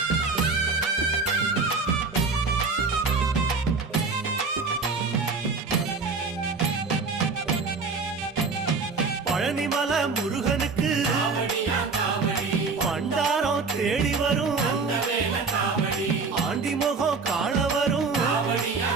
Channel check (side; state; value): left; quieter; 4.4 dB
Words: பழனிமல முருகனுக்கு பண்டாரம் தேடி வரும், ஆண்டி முகம் காண வரும்,